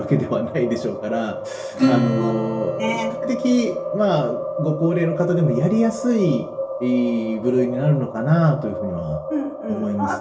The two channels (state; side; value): identical; both; correlation 1.00